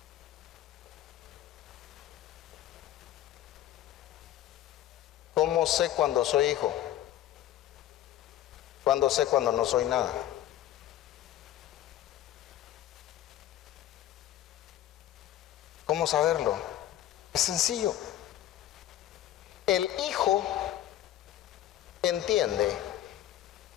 ¿Cómo sé cuando soy hijo? ¿Cuándo sé cuando no soy nada? ¿Cómo saberlo? Es sencillo. El hijo entiende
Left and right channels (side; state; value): right; quieter; 12.8 dB